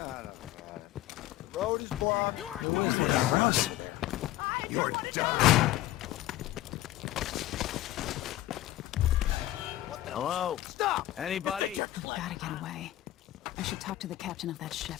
got it. The road is blocked. You aren't doing it, Empress. You're done. Hello? Stop! Anybody? We've gotta get away. I should talk to the captain of that ship.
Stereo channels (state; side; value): quieter; right; 15.4 dB